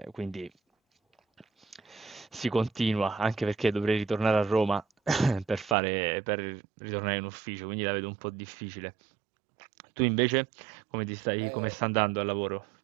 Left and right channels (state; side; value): drops out; left; at 5.8 s